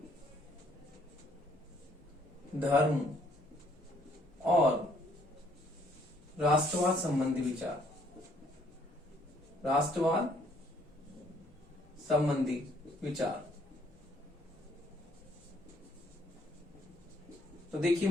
धर्म और राष्ट्रवाद संबंधी विचार, तो देखिए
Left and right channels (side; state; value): both; normal; correlation 0.65